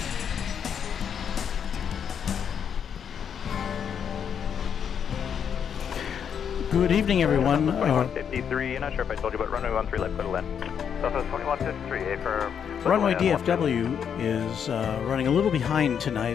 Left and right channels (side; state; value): right; quieter; 7.8 dB